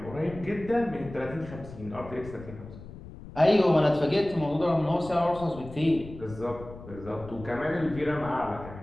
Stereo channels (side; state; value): left; noise; rumble, 15 dB below the sound